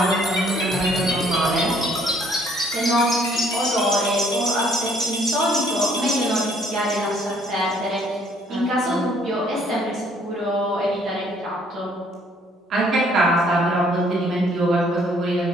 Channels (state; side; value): normal; both; correlation 0.63